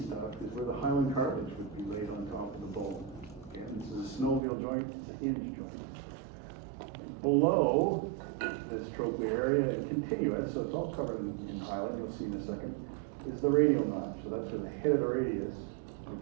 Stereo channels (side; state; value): left; drops out; at 4.4 s